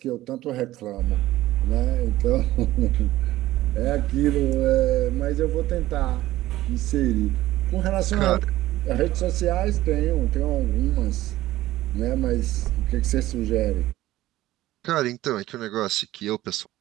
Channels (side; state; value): left; quieter; 15.7 dB